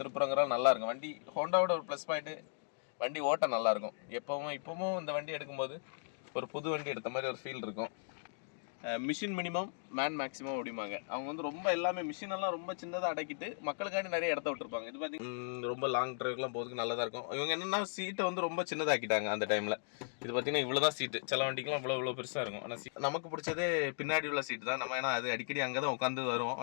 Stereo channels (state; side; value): silent; right; digital silence